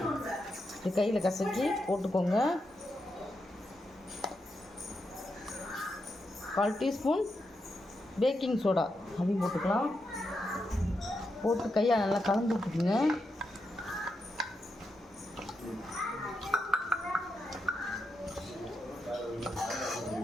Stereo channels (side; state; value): both; normal; correlation 0.85